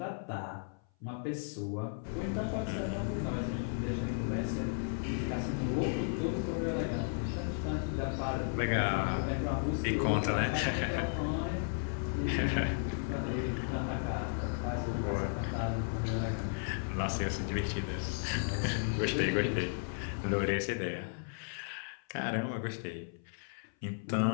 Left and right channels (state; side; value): silent; right; 55 dB below the other